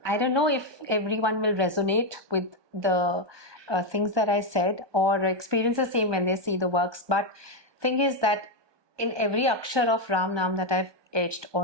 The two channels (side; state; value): left; late; 1.2 ms